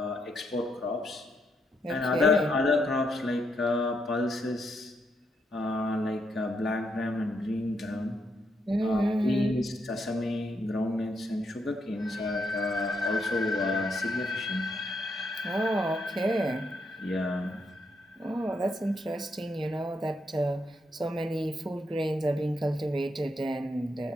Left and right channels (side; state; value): both; normal; correlation 0.78